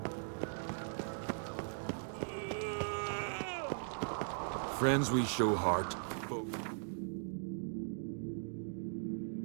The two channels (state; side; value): silent; left; digital silence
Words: Friends we show heart.